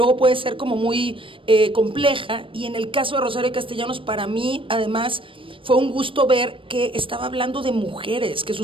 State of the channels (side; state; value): left; late; 0.25 ms